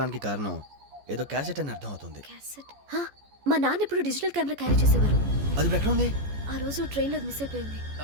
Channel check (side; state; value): left; late; 14 ms